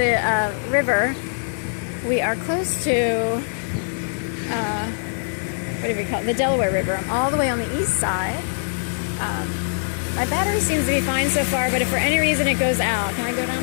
river. We are close to, what do we call it? The Delaware River. I'm all the way on the east side. My battery seems to be fine so far, but if for any reason it goes out, can I go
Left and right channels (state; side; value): silent; right; digital silence